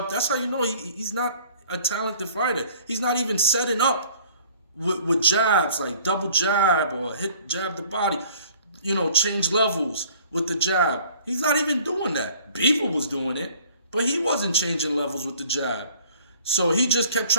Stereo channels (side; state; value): both; inverted; correlation -0.53